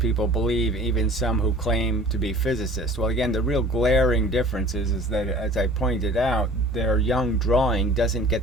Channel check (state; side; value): normal; both; correlation 0.47